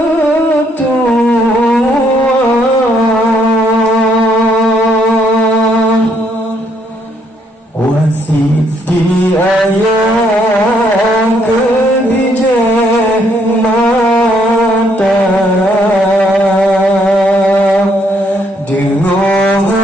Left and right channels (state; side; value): normal; both; correlation 0.70